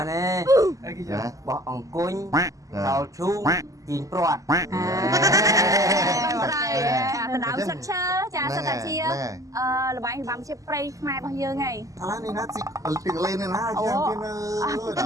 នទេអីគេបោះអង្គុញដល់ឈូងជីងព្រាត់ដណ្ដើមសឹកឈើចាសឹកតាជាល្បែងរបាំជាព្រៃខ្មែររបស់យើងហីឥឡូវនេះណាទីលេននេះណាជាងគេនៅដ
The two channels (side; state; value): left; late; 0.16 ms